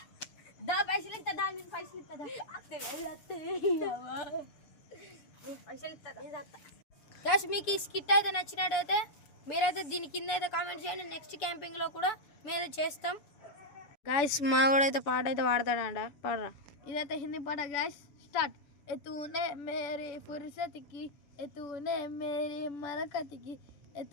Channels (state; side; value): late; right; 7.0 ms